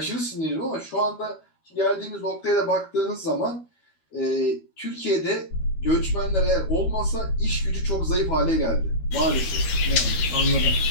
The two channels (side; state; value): right; late; 13 ms